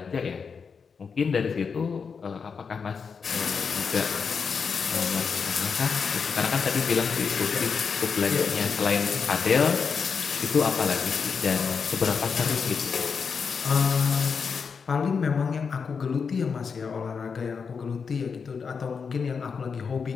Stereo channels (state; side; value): quieter; right; 5.8 dB